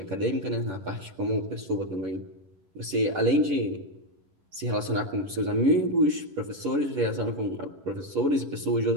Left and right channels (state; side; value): late; left; 11 ms